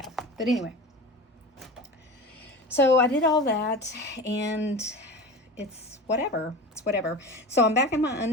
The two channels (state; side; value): normal; both; correlation 0.31